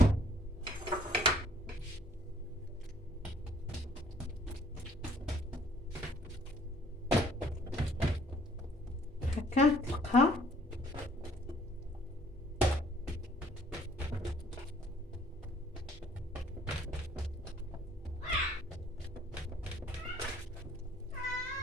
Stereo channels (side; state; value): both; normal; correlation 0.59